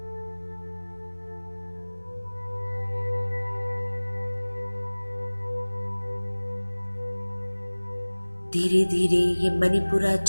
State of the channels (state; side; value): inverted; both; correlation -1.00